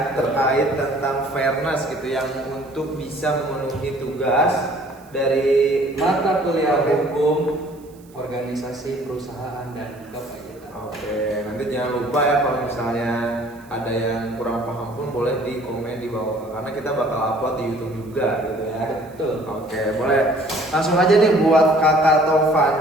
terkait tentang fairness gitu yang untuk bisa memenuhi tugas dari mata kuliah hukum, organisasi, perusahaan, dan kepajakan. Oke, nanti jangan lupa ya kalau misalnya ada yang kurang paham pun boleh di komen di bawah karena kita bakal upload di YouTube juga gitu ya. Betul. Oke, boleh. Langsung aja nih buat kakak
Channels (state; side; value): noise; right; hiss, 28 dB below the sound